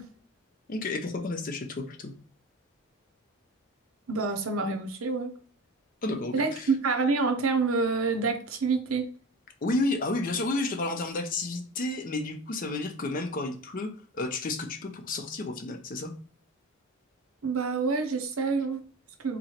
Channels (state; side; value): normal; both; correlation 0.32